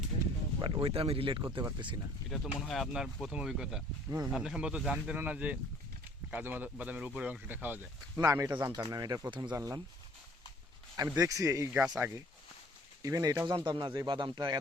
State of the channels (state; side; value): normal; both; correlation 0.55